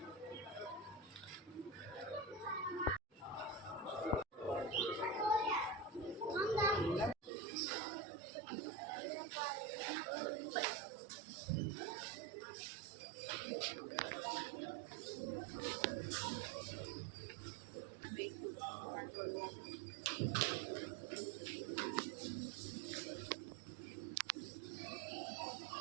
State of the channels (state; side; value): drops out; left; at 7.3 s